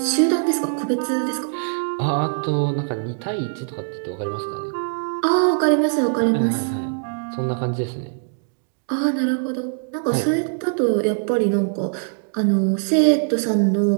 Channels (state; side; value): silent; left; digital silence